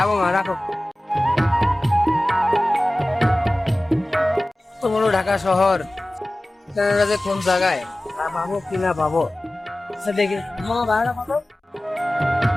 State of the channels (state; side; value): normal; both; correlation 0.97